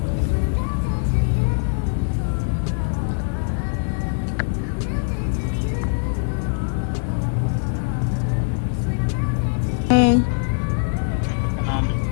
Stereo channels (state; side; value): silent; right; digital silence